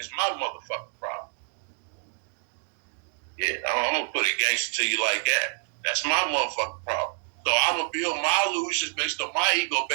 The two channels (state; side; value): silent; left; digital silence